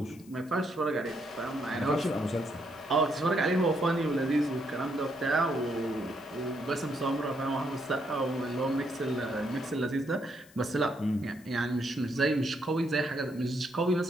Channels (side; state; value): left; noise; hiss, 25 dB below the sound